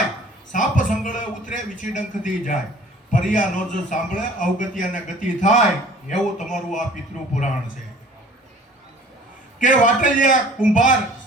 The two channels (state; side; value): normal; both; correlation 0.50